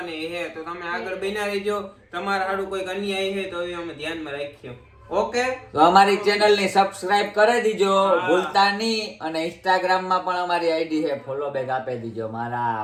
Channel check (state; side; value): identical; both; correlation 1.00